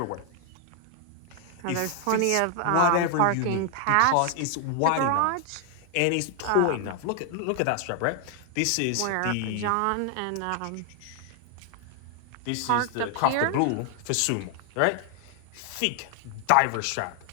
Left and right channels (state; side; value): different; both; correlation 0.00